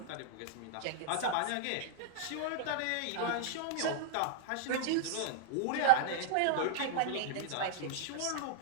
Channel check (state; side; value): different; both; correlation -0.01